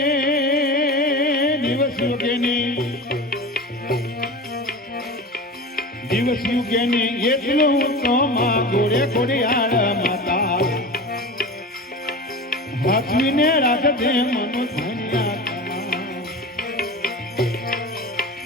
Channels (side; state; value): both; normal; correlation 0.31